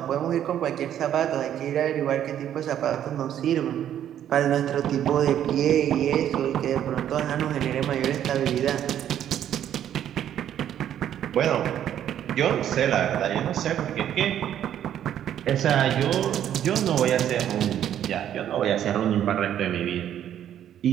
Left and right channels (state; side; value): quieter; left; 10.5 dB